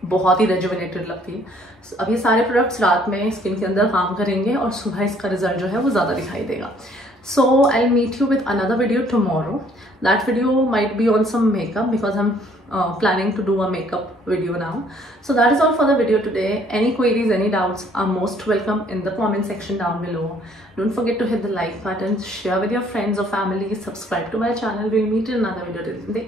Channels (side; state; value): both; normal; correlation 0.61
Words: बहुत ही रेजुविनेटेड लगती है। अब ये सारे प्रोडक्ट्स रात में स्किन के अंदर काम करेंगे और सुबह इसका रिजल्ट जो है वो ज़्यादा दिखाई देगा। So I'll meet you with another video tomorrow. That video might be on some makeup because I'm planning to do a makeup video now. So that is all for the video today. Any queries, any doubts are most welcome in the comment section down below. Don't forget to hit the like button, share with your friends or family, subscribe to my channel. We'll meet in another video. Take